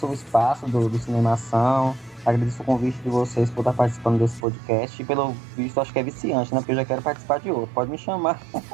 o espaço do Cinemação, agradeço o convite de vocês por estar participando desse podcast e pelo visto acho que é viciante, né? Porque eu já quero participar de outro. Pode me chamar.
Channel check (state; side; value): drops out; left; at 4.5 s